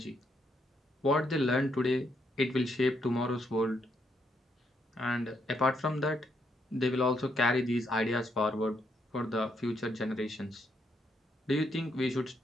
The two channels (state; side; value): normal; both; correlation 0.76